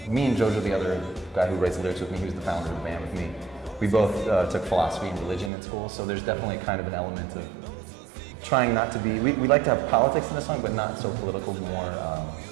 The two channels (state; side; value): drops out; left; at 5.5 s